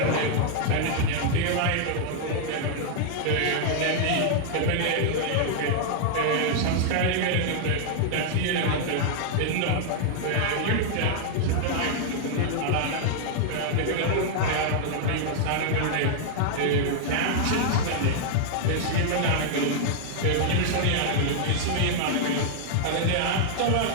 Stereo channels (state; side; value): different; both; correlation -0.01